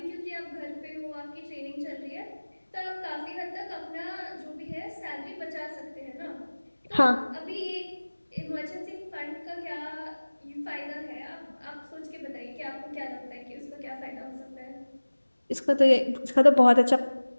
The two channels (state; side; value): inverted; both; correlation -1.00